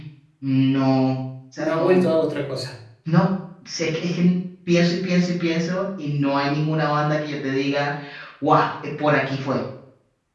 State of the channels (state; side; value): identical; both; correlation 1.00